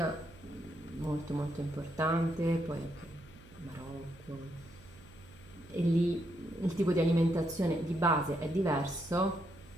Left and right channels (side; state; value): right; noise; hum, 22 dB below the sound